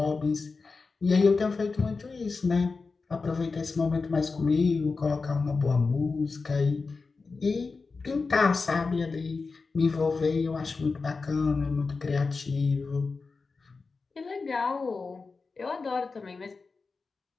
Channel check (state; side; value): quieter; right; 4.3 dB